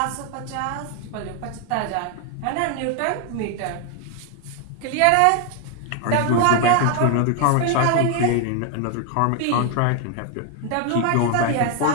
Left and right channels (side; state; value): both; different; correlation 0.01